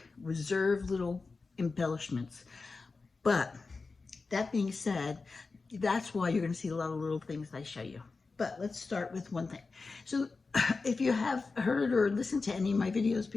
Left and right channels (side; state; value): right; quieter; 4.1 dB